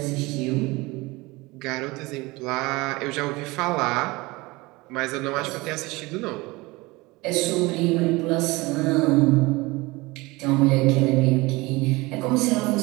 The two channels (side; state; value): left; quieter; 22.6 dB